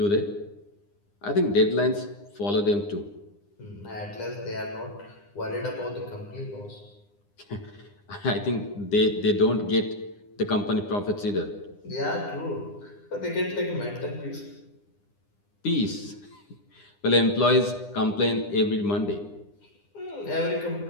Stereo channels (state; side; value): late; right; 9.8 ms